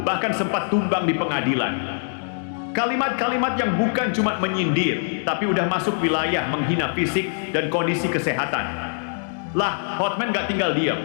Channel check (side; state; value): right; silent; digital silence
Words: bahkan sempat tumbang di pengadilan. Kalimat-kalimat yang bukan cuma menyindir, tapi udah masuk wilayah menghina fisik dan kondisi kesehatan. Lah, Hotman gak tinggal diam.